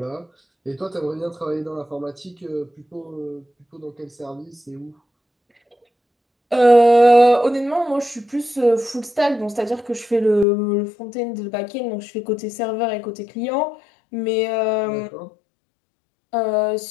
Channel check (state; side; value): drops out; right; at 10.5 s